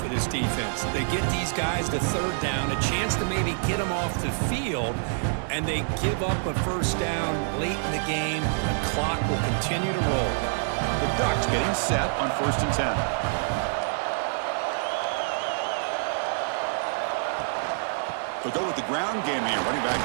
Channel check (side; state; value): left; silent; digital silence